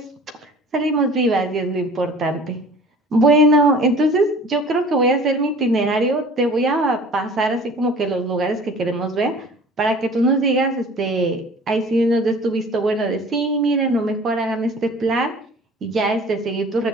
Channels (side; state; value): both; normal; correlation 0.46